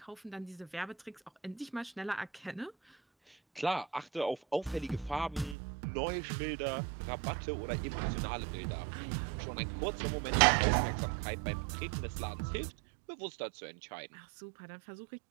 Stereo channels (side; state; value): left; drops out; at 5.6 s